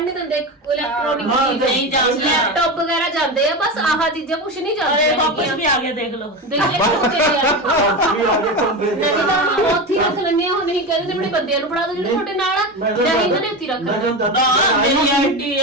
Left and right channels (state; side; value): normal; both; correlation 0.21